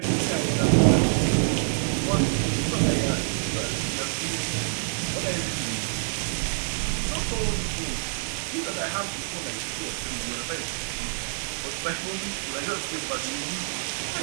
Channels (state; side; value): silent; left; digital silence